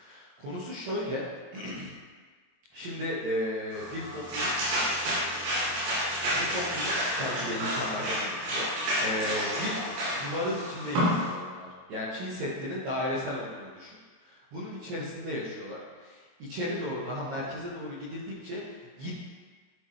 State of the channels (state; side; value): late; left; 23 ms